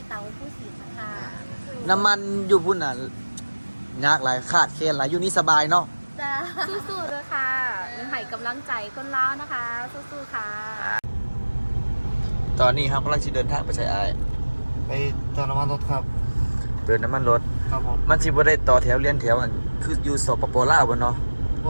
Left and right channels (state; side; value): inverted; both; correlation -1.00